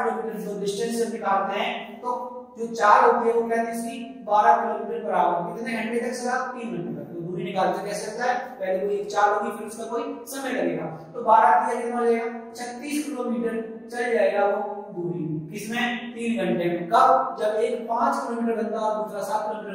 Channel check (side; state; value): both; identical; correlation 1.00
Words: जो डिस्टेंस हम निकालते हैं तो जो चाल होती है वो क्या थी इसकी, 12 किलोमीटर बराबर कितने घंटे तक चला, 3 घंटे तक। तो दूरी निकालते कैसे होता है, पहले कोई एक चाल होगी फिर उसका कोई समय लगेगा, तो 12 किया कितना हो जाएगा, 36 किलोमीटर चल जाएगा वो दूरी, किसमें, 3 घंटे में। कब, जब एक 5 किलोमीटर घंटा और दूसरा 7